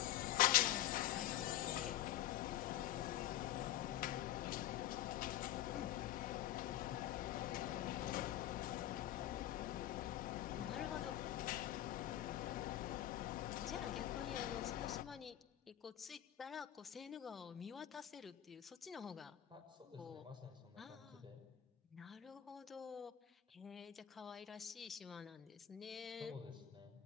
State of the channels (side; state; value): right; quieter; 12.5 dB